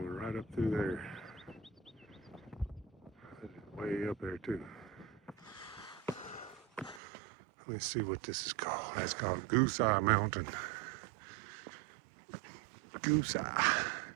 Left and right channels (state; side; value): drops out; left; at 7.0 s